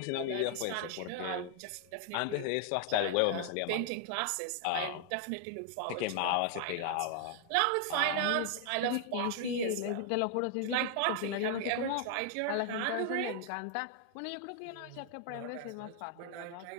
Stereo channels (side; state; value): both; different; correlation 0.00